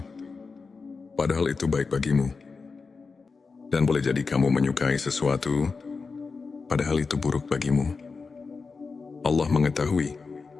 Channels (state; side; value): quieter; right; 4.6 dB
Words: padahal itu baik bagimu. Dan boleh jadi kamu menyukai sesuatu, padahal itu buruk bagimu. Allah mengetahui,